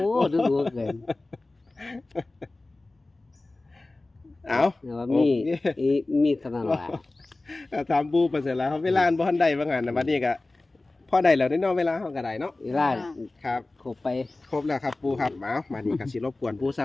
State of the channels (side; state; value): right; quieter; 3.0 dB